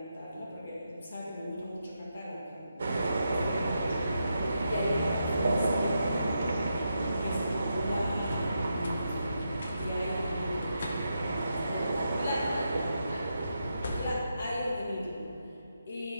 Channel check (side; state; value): both; inverted; correlation -0.84